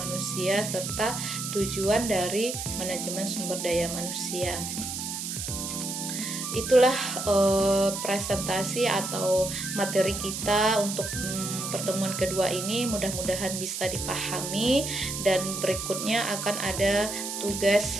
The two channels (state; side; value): noise; right; hiss, 5 dB below the sound